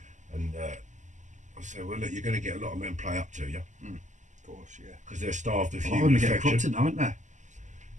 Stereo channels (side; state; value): left; late; 0.35 ms